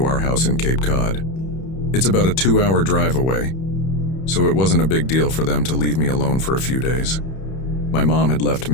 our house in Cape Cod. It's about a 2-hour drive away, so it wasn't a big deal for them to leave me alone for a few days. My mom had left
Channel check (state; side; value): late; right; 31 ms